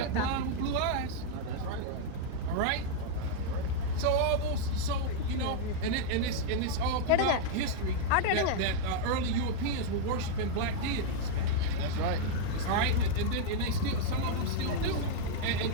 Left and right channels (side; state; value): both; different; correlation -0.01